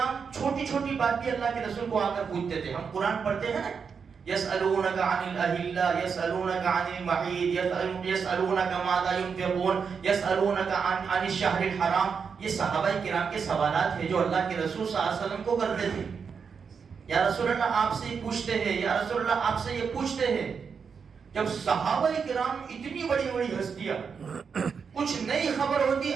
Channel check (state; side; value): quieter; left; 6.1 dB